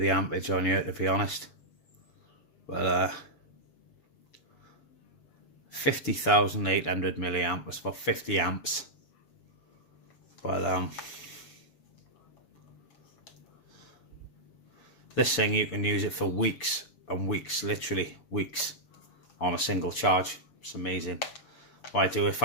ampage on here, to be honest, but 50,800 milliamp, that's about 50 amps. But this thing, you can use it for weeks and weeks, literally weeks, on a single charge. It's amazing. What I do, if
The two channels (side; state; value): right; late; 6.9 ms